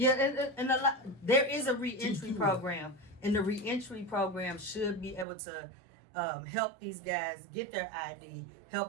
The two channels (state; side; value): drops out; left; at 5.2 s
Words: and a lot. There is a reentry program, and the reentry program should be able to help these guys get their ID,